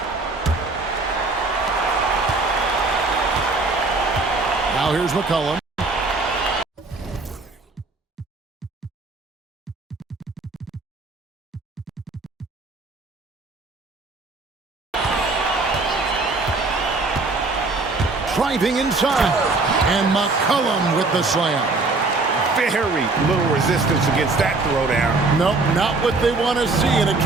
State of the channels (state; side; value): quieter; left; 3.6 dB